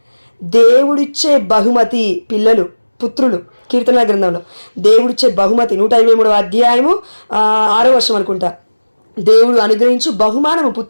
దేవుడిచ్చే బహుమతి పిల్లలు, పుత్రులు. కీర్తనల గ్రంథంలో దేవుడిచ్చే బహుమతి 123వ అధ్యాయము 6వ వర్షం అనుకుంటా, దేవుడు అనుగ్రహించు బహుమానము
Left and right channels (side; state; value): both; inverted; correlation -1.00